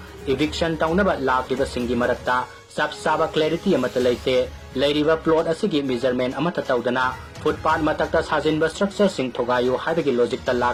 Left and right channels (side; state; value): both; identical; correlation 1.00